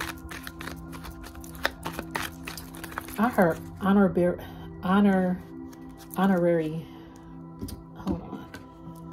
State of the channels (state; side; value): identical; both; correlation 1.00